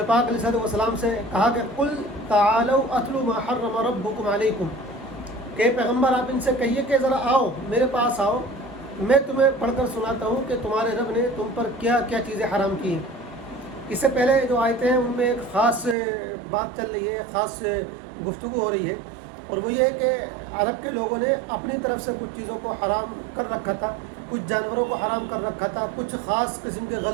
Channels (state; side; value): drops out; left; at 16.0 s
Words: پاک علیہ الصلوۃ والسلام سے کہا کہ قل تعالوا اتلوا ما حرم ربکم علیکم، کہ پیغمبر آپ ان سے کہیے کہ ذرا آؤ میرے پاس آؤ، میں تمہیں پڑھ کر سناتا ہوں کہ تمہارے رب نے تم پر کیا کیا چیزیں حرام کی ہیں۔ اس سے پہلے جو آیتیں ہیں ان میں ایک خاص بات چل رہی ہے، خاص گفتگو ہو رہی ہے، اور وہ یہ ہے کہ عرب کے لوگوں نے اپنی طرف سے کچھ چیزوں کو حرام کر رکھا تھا، کچھ جانوروں کو حرام کر رکھا تھا، کچھ خاص قسم کے